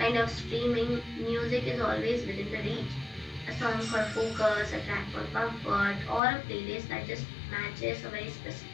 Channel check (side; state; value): right; drops out; at 6.2 s